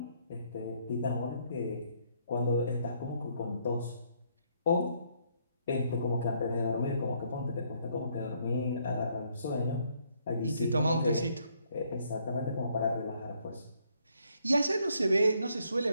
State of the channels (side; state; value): both; inverted; correlation -0.70